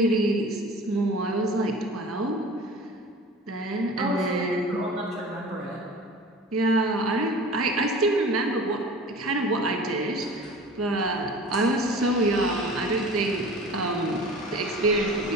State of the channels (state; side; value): normal; both; correlation 0.40